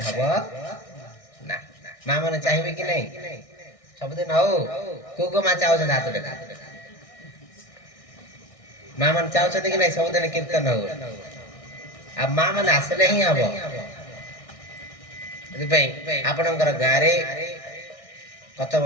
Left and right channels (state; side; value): late; right; 1.6 ms